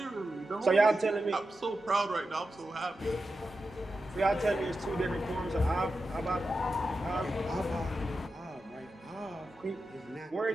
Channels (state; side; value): normal; both; correlation 0.90